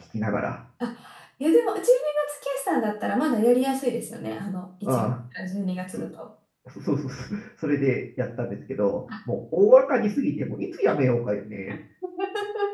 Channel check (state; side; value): identical; both; correlation 1.00